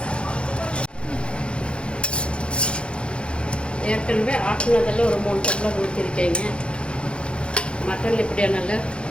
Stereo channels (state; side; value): late; right; 0.057 ms